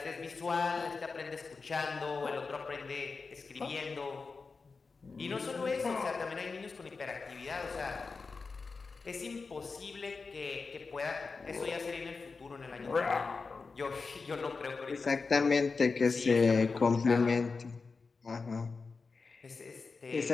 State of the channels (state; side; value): quieter; right; 4.5 dB